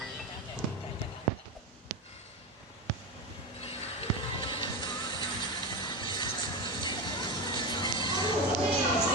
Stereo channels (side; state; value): both; normal; correlation 0.17